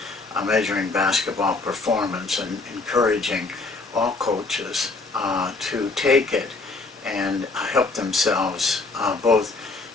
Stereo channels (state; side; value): quieter; right; 3.6 dB